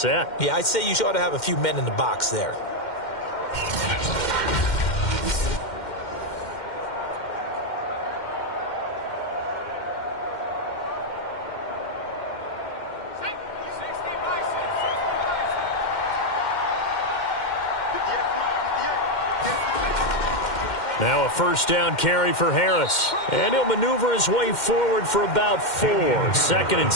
Yeah, I'd say you ought to have a few men in the box there. Now a first down carry for Harris. And he'll maneuver his way forward for about 4. 2nd and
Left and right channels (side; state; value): right; late; 2.1 ms